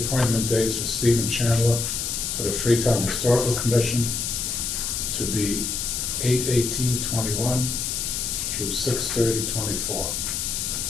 dates for Stephen Chandler for the Freetown Historical Commission to be 8/18/21 through 6/30/24.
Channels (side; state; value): left; noise; hiss, 2 dB below the sound